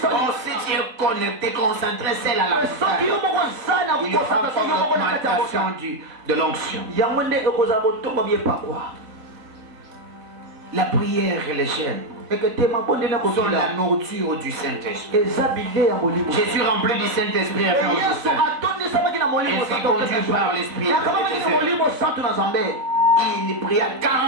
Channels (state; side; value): late; left; 3.9 ms